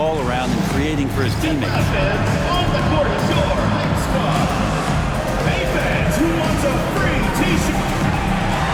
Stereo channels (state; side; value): identical; both; correlation 1.00